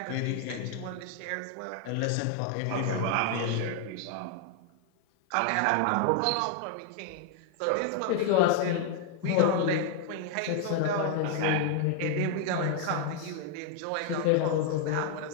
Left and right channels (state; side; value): different; both; correlation 0.00